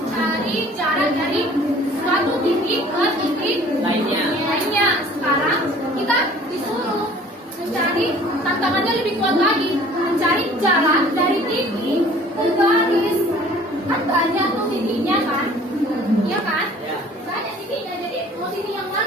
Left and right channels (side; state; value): both; normal; correlation 0.50